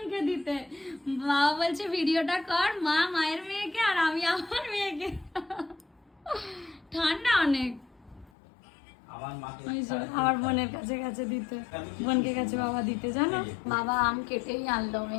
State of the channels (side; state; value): right; drops out; at 8.3 s